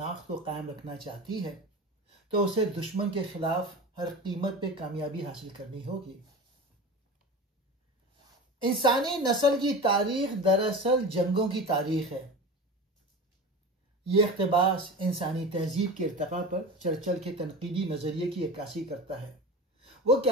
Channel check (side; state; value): both; normal; correlation 0.31